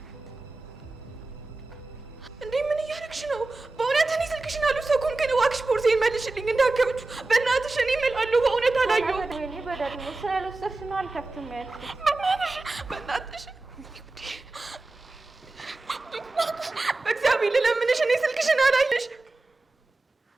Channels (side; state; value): left; quieter; 3.2 dB